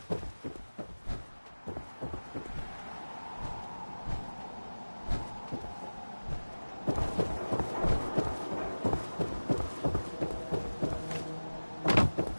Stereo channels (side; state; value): both; inverted; correlation -1.00